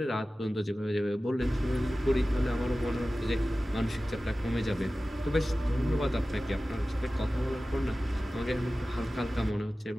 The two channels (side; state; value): both; normal; correlation 0.96